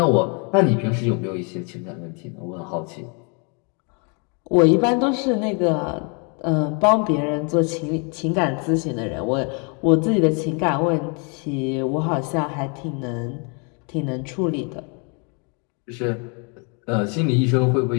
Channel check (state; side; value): quieter; right; 35.7 dB